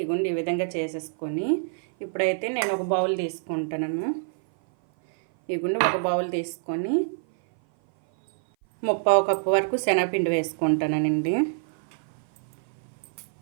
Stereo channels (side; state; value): left; silent; 56 dB below the other